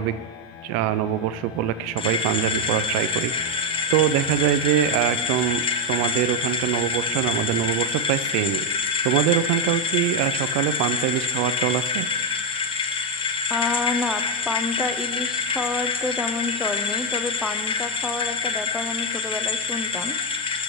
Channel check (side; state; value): both; normal; correlation 0.06